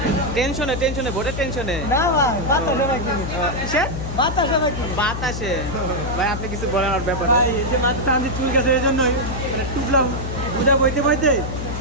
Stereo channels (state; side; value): noise; left; hum, 5 dB below the sound